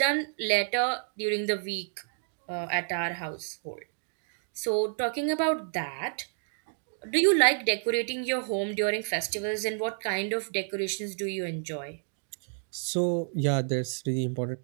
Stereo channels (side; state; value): left; silent; digital silence